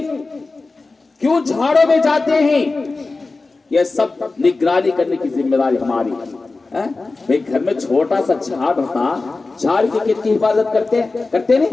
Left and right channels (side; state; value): right; quieter; 3.6 dB